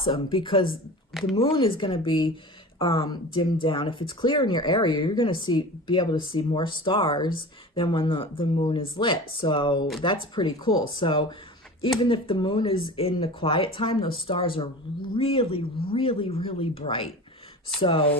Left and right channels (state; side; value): normal; both; correlation 0.35